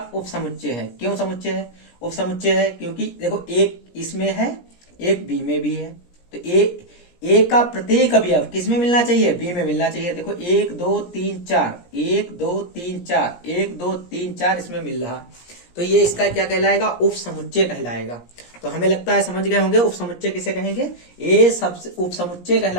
उपसमुच्चय है। क्यों समुच्चय है, उपसमुच्चय है क्योंकि देखो एक इसमें है, एक बी में भी है। तो ए का प्रत्येक अवयव किस में मिलना चाहिए, बी में मिलना चाहिए। देखो 1, 2, 3, 4, 1, 2, 3, 4, 1, 2, 3, 4 इसमें मिल रहा, तो ये इसका क्या कहलाएगा, उपसमुच्चय कहलाएगा। तो हमें लगता है समझ गए होंगे उपसमुच्चय किसे कहेंगे, ए सबसे उपसमुच्चय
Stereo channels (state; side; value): late; right; 17 ms